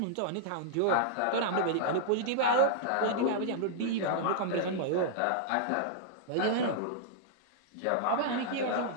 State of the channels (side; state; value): both; different; correlation -0.02